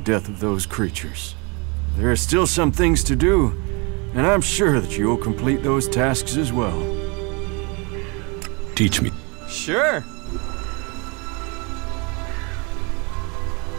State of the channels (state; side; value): quieter; left; 31.0 dB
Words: of those creatures. There are still some things to do, and I'm sure that you'll complete those tasks as well. Teach me. Sure.